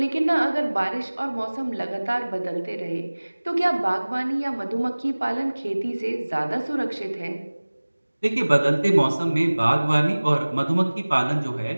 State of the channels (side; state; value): both; inverted; correlation -1.00